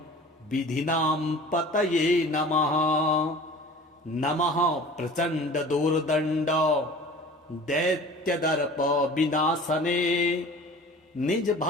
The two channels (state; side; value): normal; both; correlation 0.43